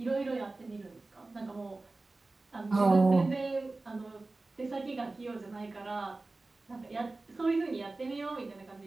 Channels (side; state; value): left; quieter; 3.3 dB